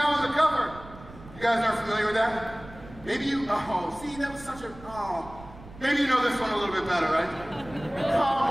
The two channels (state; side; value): noise; right; rumble, 18 dB below the sound